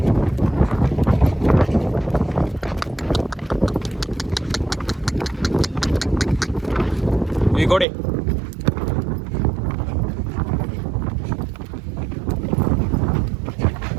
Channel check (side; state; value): left; drops out; at 7.9 s